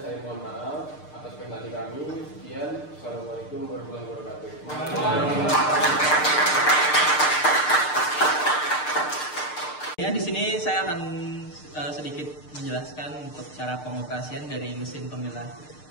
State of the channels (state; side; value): late; right; 6.7 ms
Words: saya mohon maaf atas presentasi kami. Sekian, assalamualaikum warahmatullahi wabarakatuh. Ya, di sini saya akan sedikit menjelaskan untuk cara pengoperasian dari mesin pemilah